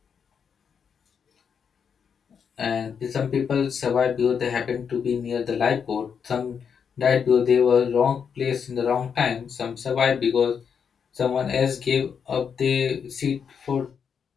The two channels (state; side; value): quieter; right; 6.9 dB